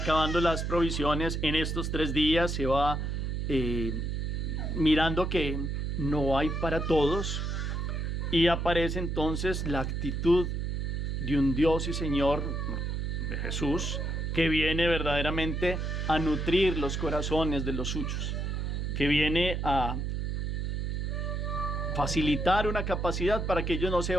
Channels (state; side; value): noise; right; hum, 1 dB below the sound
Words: las provisiones, en estos 3 días se va mirando que no hay para todos, y aparece entonces la actitud de un Dios y Señor, de Jesús, que viene verdaderamente a nutrir los corazones de los suyos, que viene a facilitar una capacidad para que ellos no se